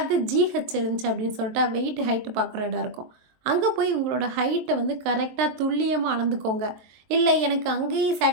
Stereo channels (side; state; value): left; late; 23 ms